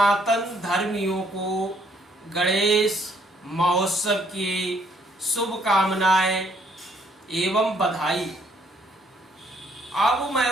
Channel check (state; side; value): normal; both; correlation 0.67